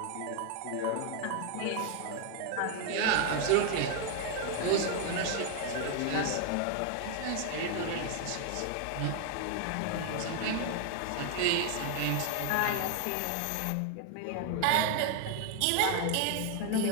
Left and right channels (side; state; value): both; different; correlation 0.01